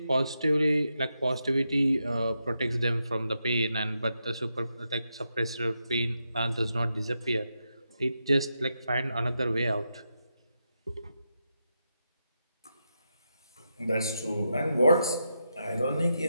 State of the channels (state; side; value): inverted; both; correlation -0.85